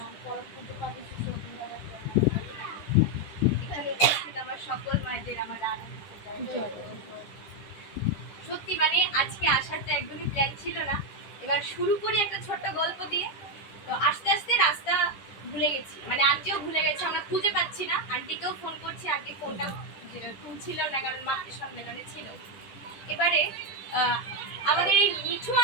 পরম পুজো পাবে শিশু এখানে উপস্থিত আমার সকল মায়েদের আমার সত্যি মানে আজকে আসার তো একদমই প্ল্যান ছিল না। এবার শুরু করি একটা ছোট্ট গল্প দিয়ে। তো আস্তে আস্তে রাস্তা ভুলে গেছি, মানে আন্টিও ভুলে গেছে, আমরা খুঁজে পাচ্ছি না। আন্টিকেও ফোন করছি, আন্টি ফোনটা তুলছিল না কারণ মাকে সম্মেলনে ছিল। এবারে আমাদের এই মিঠু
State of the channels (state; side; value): late; right; 9.9 ms